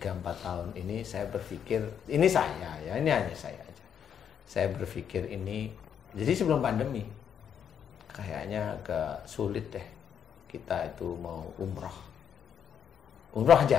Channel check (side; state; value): right; quieter; 8.3 dB